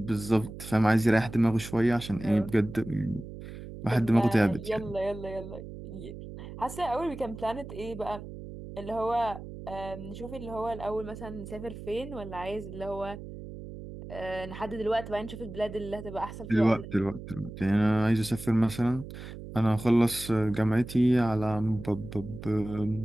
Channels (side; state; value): right; noise; hum, 12 dB below the sound